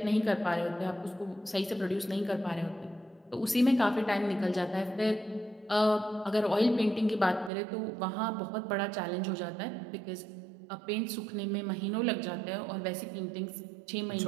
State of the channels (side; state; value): left; drops out; at 7.5 s